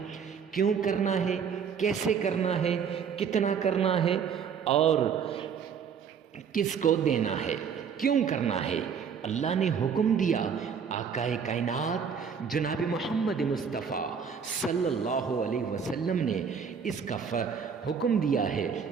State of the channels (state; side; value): quieter; left; 6.8 dB